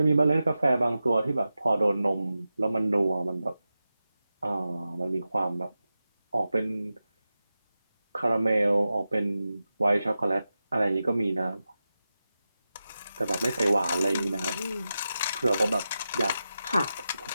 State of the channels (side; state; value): both; inverted; correlation -0.92